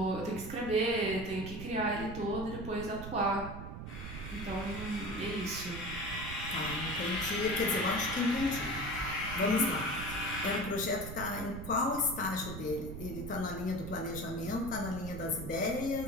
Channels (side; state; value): right; noise; rumble, 8 dB below the sound